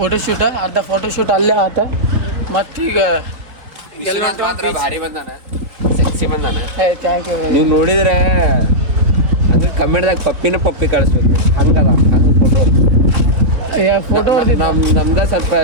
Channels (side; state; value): left; late; 4.1 ms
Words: ಅರ್ಧ ಫೋಟೋಶೂಟ್ ಅಲ್ಲೇ ಆತ ಮತ್ತೀಗ ಭಾರಿ ಬಂದಾನ ಸೆಕ್ಸಿ ಬಂದಾನ ಥ್ಯಾಂಕ್ ಯು. ನೀವು ನೋಡಿದ್ರೆ ಹಂಗೆ ಕಮೆಂಟ್ದಾಗ ಪಪ್ಪಿ ಕಳಿಸ್ಬೇಕು ಹಂಗದ ನಂದು ಫೋಟೋ ನಮ್ದ ಸ್ವಲ್ಪ